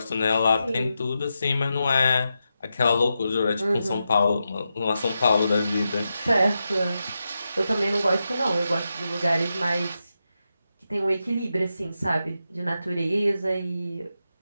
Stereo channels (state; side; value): inverted; both; correlation -0.88